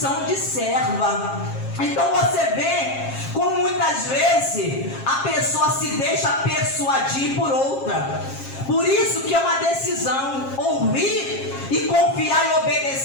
de serva. Então você vê como muitas vezes a pessoa se deixa persuadir por outra. Por isso que é uma decisão. Ouvir e confiar e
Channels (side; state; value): right; late; 7.4 ms